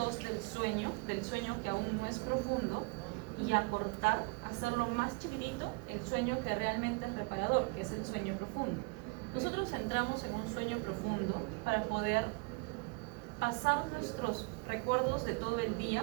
del sueño que aún no es profundo, y acortar, hacerlo más chiquitito el sueño que realmente es reparador, que es el sueño profundo. Nosotros entramos en un sueño profundo para poder pasar nuestros recuerdos de todo el día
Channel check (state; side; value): quieter; left; 28.6 dB